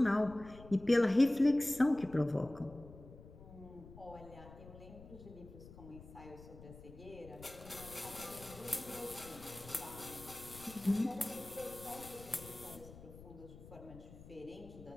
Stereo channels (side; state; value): left; noise; rumble, 17 dB below the sound